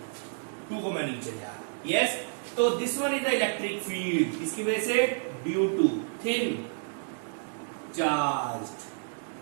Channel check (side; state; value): left; silent; digital silence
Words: 2 को मैं नीचे ले आया। यस, तो this one is the electric field, इसकी वजह से due to thin